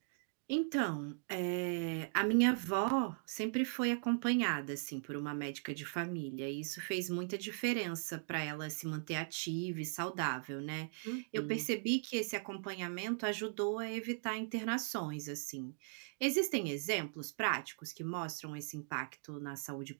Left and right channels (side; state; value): left; silent; digital silence